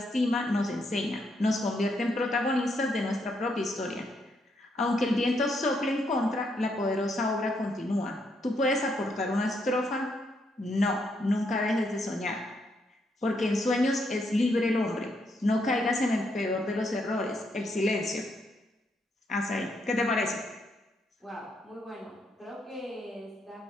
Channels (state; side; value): normal; both; correlation 0.76